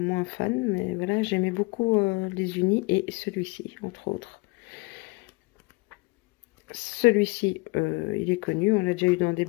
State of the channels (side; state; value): right; quieter; 25.7 dB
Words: fan, mais voilà, j'aimais beaucoup les unis et celui-ci, entre autres. Celui-ci, il est connu. On l'a déjà eu dans des